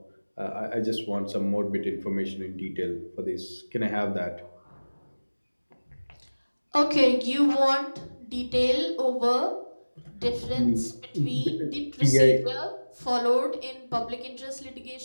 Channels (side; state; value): both; inverted; correlation -1.00